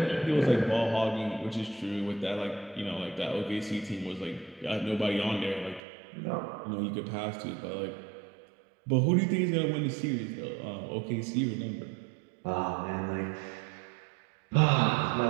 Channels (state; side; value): drops out; left; at 5.8 s